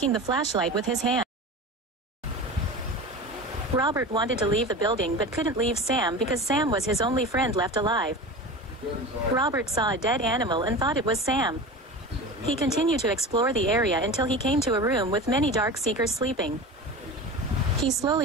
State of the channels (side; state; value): both; normal; correlation 0.31